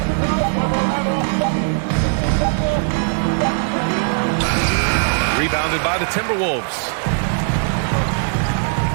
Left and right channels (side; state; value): left; silent; 67 dB below the other